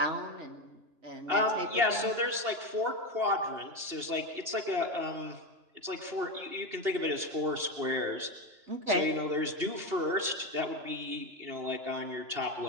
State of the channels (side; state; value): left; late; 2.8 ms